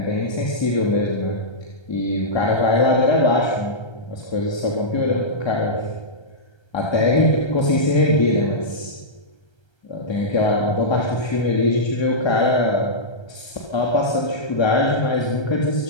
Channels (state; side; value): late; right; 1.3 ms